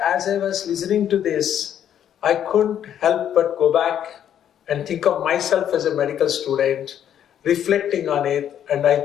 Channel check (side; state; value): right; quieter; 9.9 dB